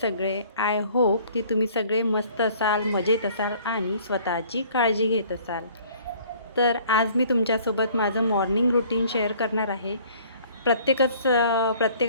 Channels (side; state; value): both; inverted; correlation -0.55